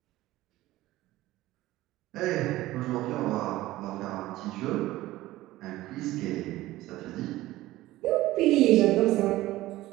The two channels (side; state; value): left; quieter; 16.8 dB